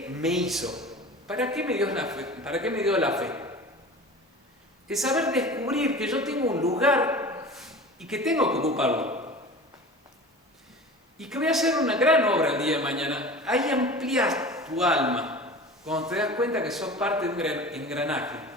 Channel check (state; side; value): normal; both; correlation 0.36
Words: me hizo? ¿Para qué me dio la fe? ¿Para qué me dio la fe? Es saber descubrir que yo tengo un lugar y que tengo que ocuparlo. Y que voy a hacer una gran obra el día de mañana. Ahí amplías tu alma cuando te das cuenta que sos parte de un engranaje.